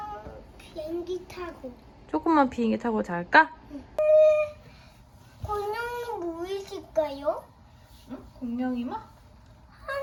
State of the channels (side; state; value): both; identical; correlation 1.00